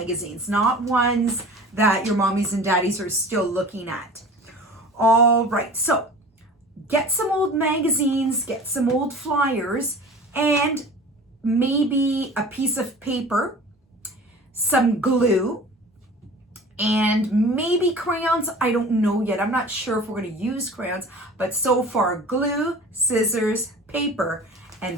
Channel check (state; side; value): normal; both; correlation 0.40